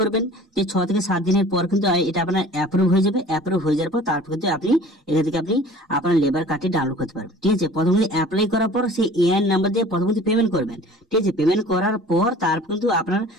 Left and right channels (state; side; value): normal; both; correlation 0.46